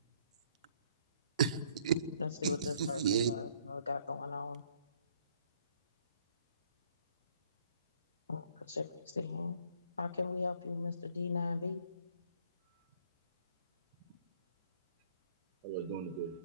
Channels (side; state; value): both; inverted; correlation -0.63